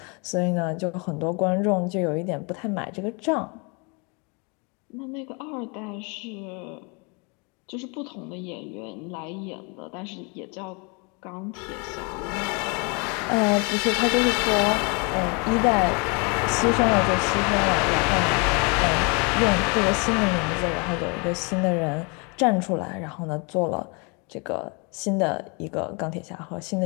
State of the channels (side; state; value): right; quieter; 32.3 dB